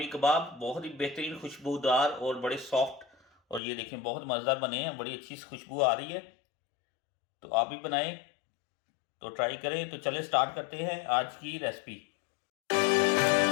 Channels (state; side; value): drops out; right; at 3.6 s